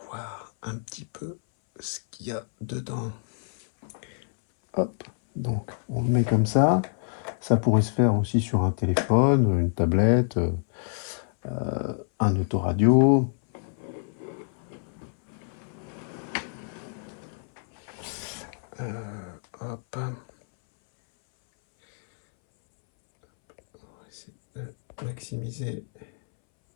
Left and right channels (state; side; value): silent; right; 60 dB below the other